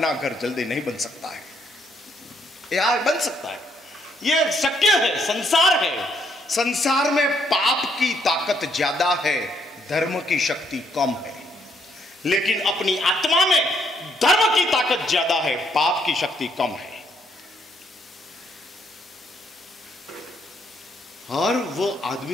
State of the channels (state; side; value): normal; both; correlation 0.72